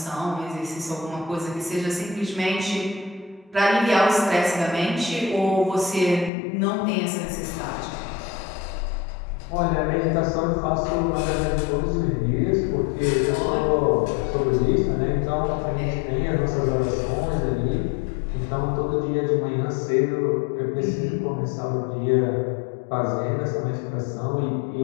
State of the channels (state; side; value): drops out; right; at 6.3 s